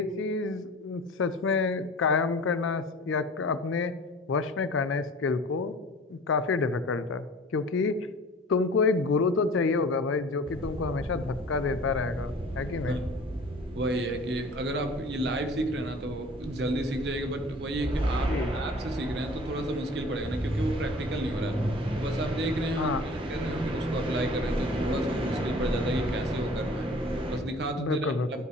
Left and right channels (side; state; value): both; normal; correlation 0.45